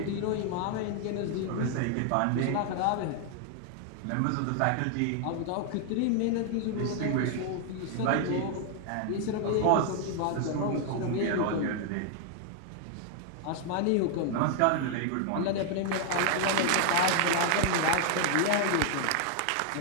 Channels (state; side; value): different; both; correlation 0.00